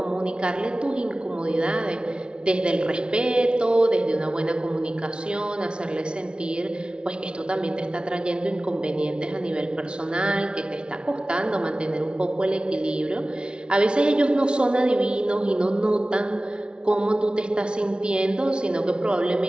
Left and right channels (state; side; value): late; left; 0.056 ms